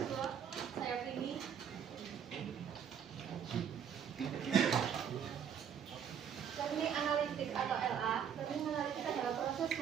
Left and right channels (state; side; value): quieter; left; 8.1 dB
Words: Saya Prini. Learning analytics atau LA. Learning analytics adalah proses